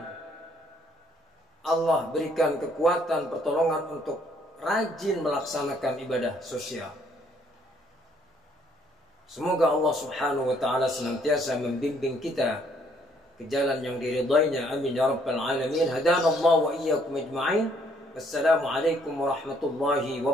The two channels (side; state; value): both; normal; correlation 0.66